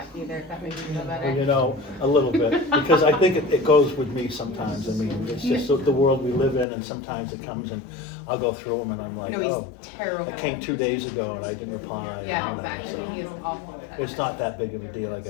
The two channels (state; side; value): drops out; right; at 6.7 s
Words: either, if that makes you feel Well, better. you know, a little bit, because I think it goes with me sometimes. I mean, it's just the world we live in and sometimes it comes and I'll go through them and I'm like, No, he's oh, terrible. it came 2 days ago and I didn't reply. Yeah, exactly, he is awful. It's not that big of a deal, I